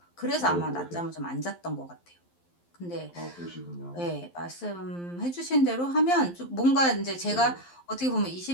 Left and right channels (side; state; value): right; late; 11 ms